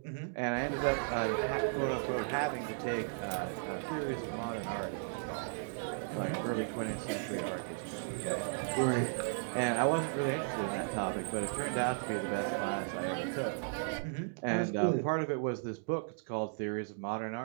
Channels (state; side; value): silent; left; digital silence